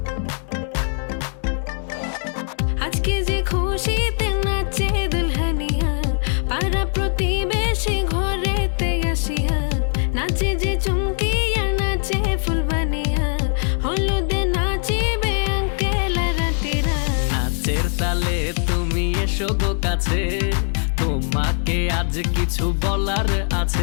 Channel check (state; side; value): silent; right; 63 dB below the other